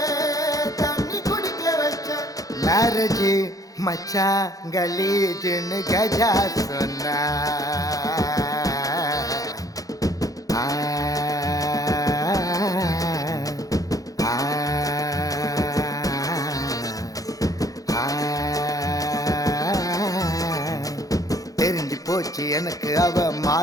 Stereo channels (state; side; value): late; right; 0.17 ms